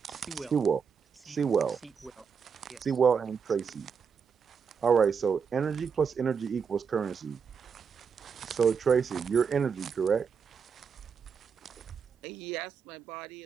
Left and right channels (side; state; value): left; quieter; 6.2 dB